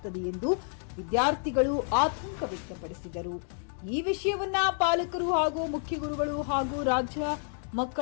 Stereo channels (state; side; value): silent; right; 58 dB below the other